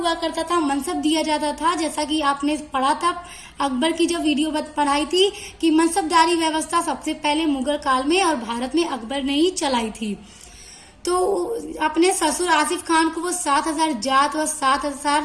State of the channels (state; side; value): identical; both; correlation 1.00